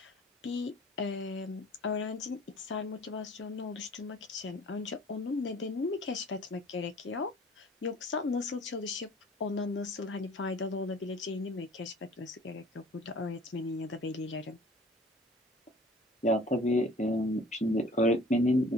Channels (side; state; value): both; normal; correlation 0.50